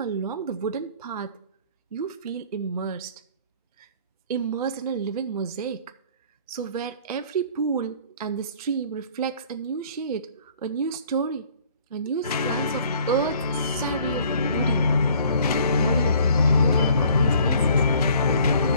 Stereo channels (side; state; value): both; inverted; correlation -0.55